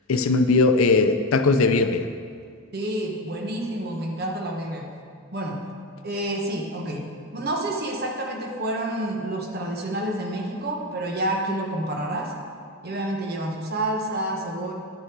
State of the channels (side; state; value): both; normal; correlation 0.16